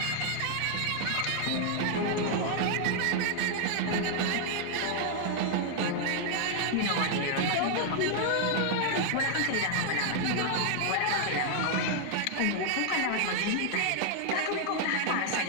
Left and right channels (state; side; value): different; both; correlation 0.00